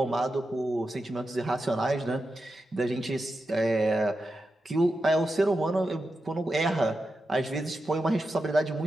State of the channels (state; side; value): normal; both; correlation 0.89